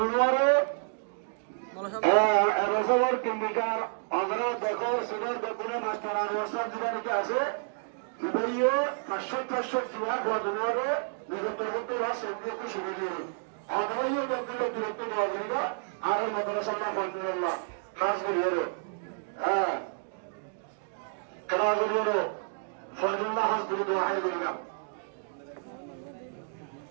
রসবর কিমিকার আমরা দেখো সুন্দর বেতনে মাস্টার আর ওসব জীবনে আছে ভাইয়ে 500 জিয়া দুয়ারে বিগত হতে রাস একটু শুরু দিয়ে আদাইয়ে বেতনে দূরত্ব দেওয়া যাবে আর মাদ্রাসা আলহামদুলিল্লাহ খাস করে হ্যাঁ كراجل فضل الله حسب الدعاء لنا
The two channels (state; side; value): silent; left; digital silence